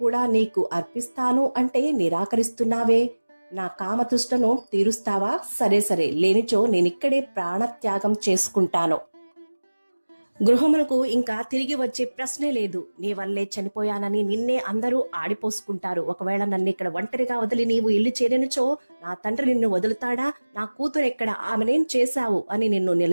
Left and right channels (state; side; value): inverted; both; correlation -1.00